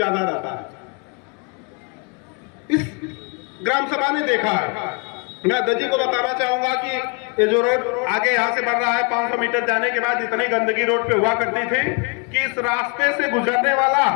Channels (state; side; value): quieter; right; 35.1 dB